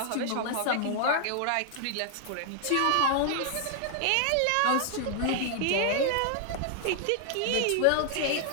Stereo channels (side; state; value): both; different; correlation 0.00